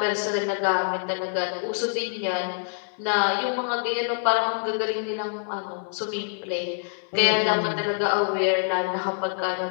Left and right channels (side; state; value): right; silent; digital silence